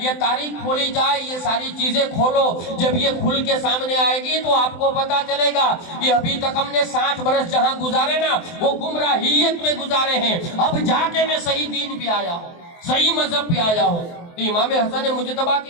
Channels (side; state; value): right; late; 23 ms